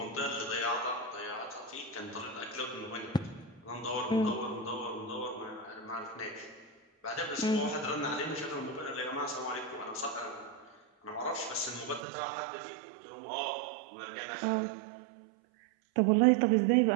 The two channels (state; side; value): drops out; left; at 12.1 s